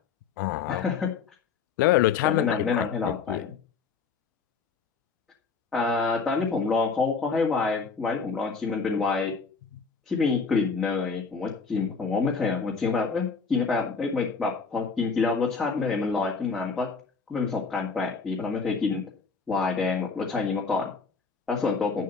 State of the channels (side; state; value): right; quieter; 5.1 dB